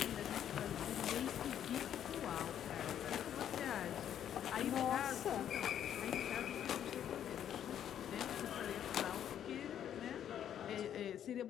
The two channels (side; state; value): right; quieter; 10.0 dB